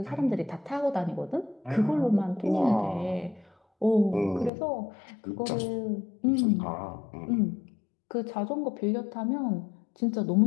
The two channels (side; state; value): right; drops out; at 4.5 s